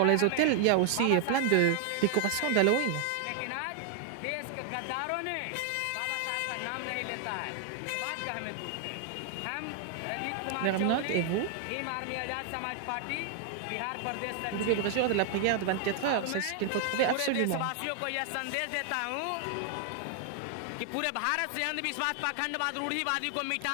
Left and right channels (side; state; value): both; different; correlation 0.00